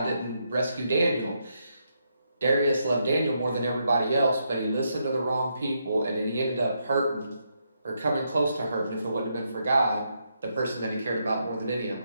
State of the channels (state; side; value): inverted; both; correlation -0.80